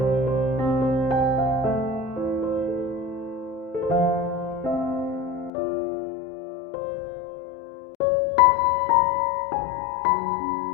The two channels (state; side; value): drops out; right; at 5.5 s